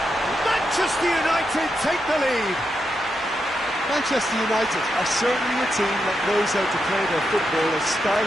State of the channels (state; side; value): normal; both; correlation 0.84